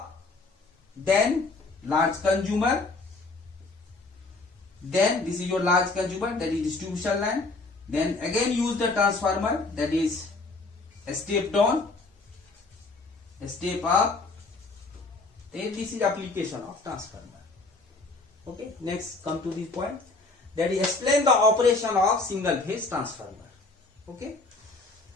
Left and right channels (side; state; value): right; quieter; 3.5 dB